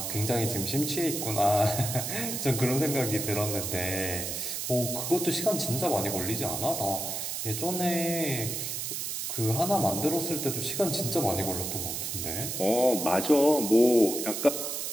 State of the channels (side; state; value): right; noise; hiss, 3 dB below the sound